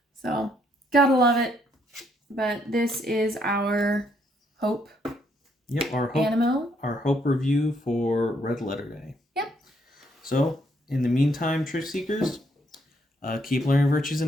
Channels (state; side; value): normal; both; correlation 0.71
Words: So, gotta love it. But this is our Hope. Yep, our Hope. Animo. Our Hope review for Red Letter Day. Yep. So, in the meantime, Trick Seekers, keep learning virtues